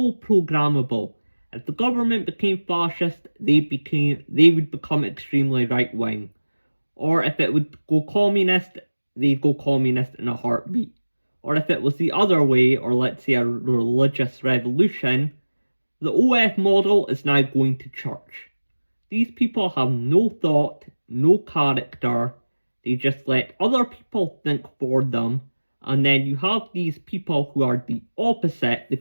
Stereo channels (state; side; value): inverted; both; correlation -1.00